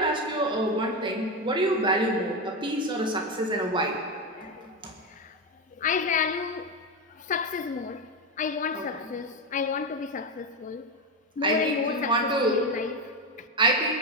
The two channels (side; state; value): both; normal; correlation 0.13